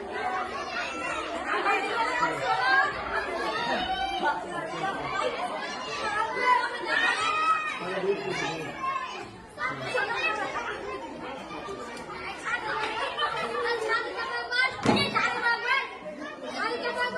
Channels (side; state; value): both; identical; correlation 1.00